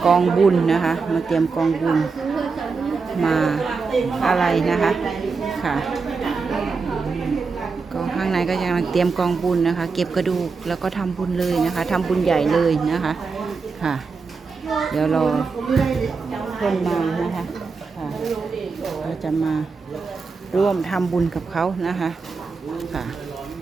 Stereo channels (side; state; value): left; quieter; 4.7 dB